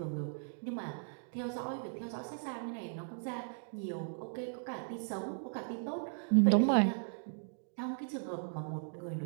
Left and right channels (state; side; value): silent; left; digital silence